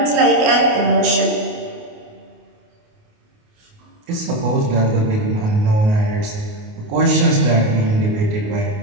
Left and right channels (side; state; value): left; late; 28 ms